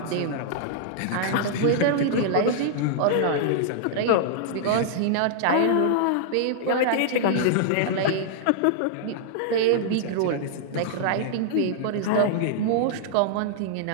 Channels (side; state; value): both; different; correlation -0.01